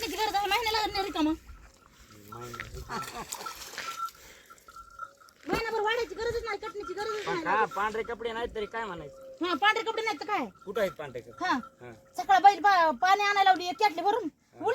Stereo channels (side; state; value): both; identical; correlation 1.00